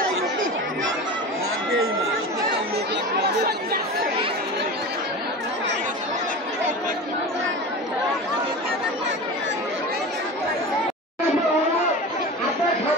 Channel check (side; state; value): both; normal; correlation 0.30